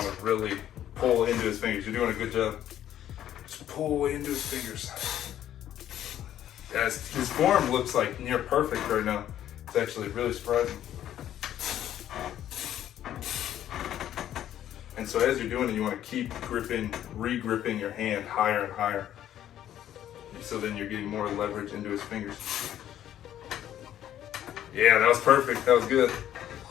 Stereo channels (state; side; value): quieter; right; 11.5 dB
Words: to really pull into his fingers. You're doing a good job. Just pull into his fingers. Yeah, his form looks like near perfect right now. It's actually really surprising. And so as you're doing it, you want to keep gripping, re-gripping your hand higher and higher. So then you're getting more leverage into his fingers. Yeah, that was perfect. That was good.